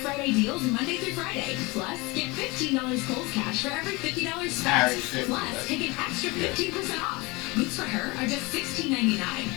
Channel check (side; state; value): right; quieter; 24.7 dB